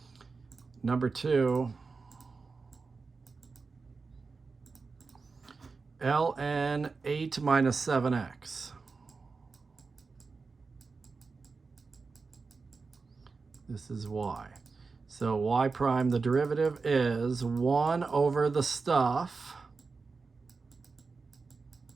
Number 2, ln 8 minus 7x. This is y. So y prime, the derivative is 1 over the stuff,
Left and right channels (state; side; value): quieter; left; 4.4 dB